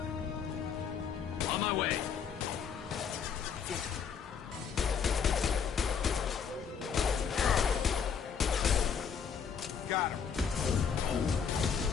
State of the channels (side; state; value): right; quieter; 6.8 dB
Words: On my way. Got him.